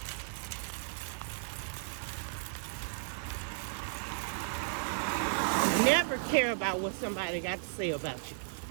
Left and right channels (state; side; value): silent; left; digital silence